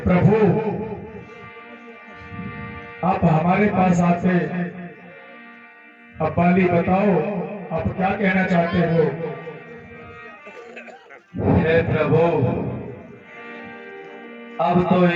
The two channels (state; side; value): identical; both; correlation 1.00